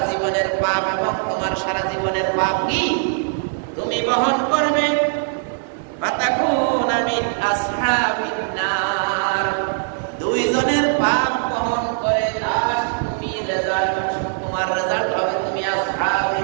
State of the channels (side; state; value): left; silent; 65 dB below the other